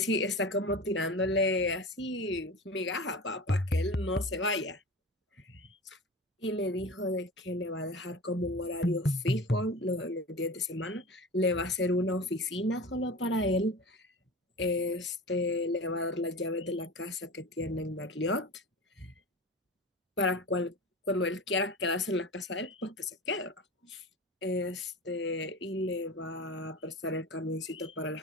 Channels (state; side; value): normal; both; correlation 0.31